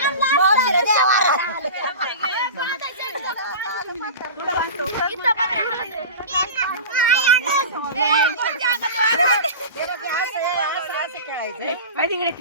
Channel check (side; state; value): both; inverted; correlation -0.32